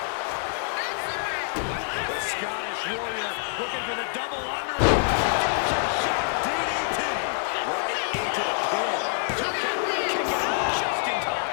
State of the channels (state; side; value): silent; right; digital silence